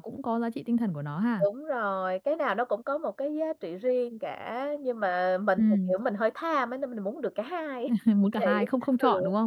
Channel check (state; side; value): identical; both; correlation 1.00